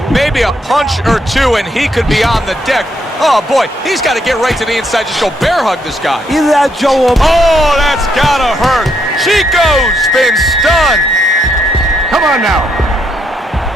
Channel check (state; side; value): normal; both; correlation 0.75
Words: Maybe a punch or two and he could be on the deck. Oh boy, he's got to get right to the inside. Just go bear hug this guy. Either that, Joe, or... Oh, that's gotta hurt. Chico's been stunned. Come on now.